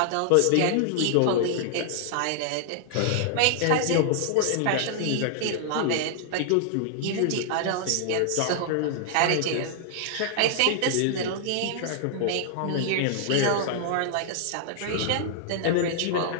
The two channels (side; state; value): both; different; correlation -0.01